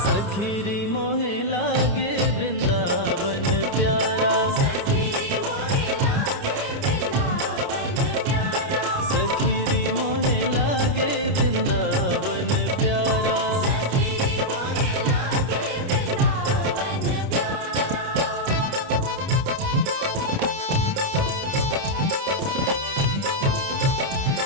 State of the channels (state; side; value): late; left; 29 ms